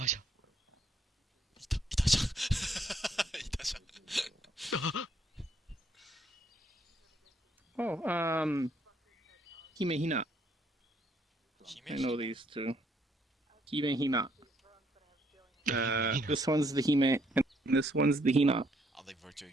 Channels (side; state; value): both; normal; correlation 0.69